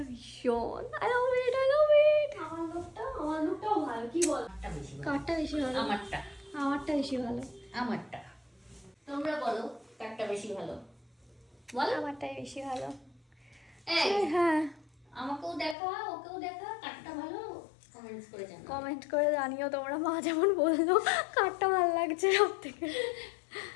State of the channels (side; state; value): right; drops out; at 15.8 s